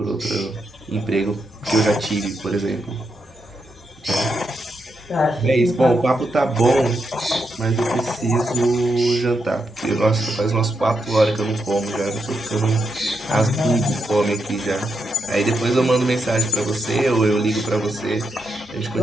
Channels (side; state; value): both; normal; correlation 0.83